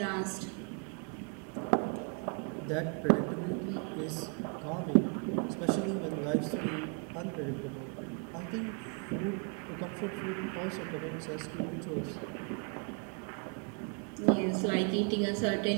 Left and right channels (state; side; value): quieter; left; 38.1 dB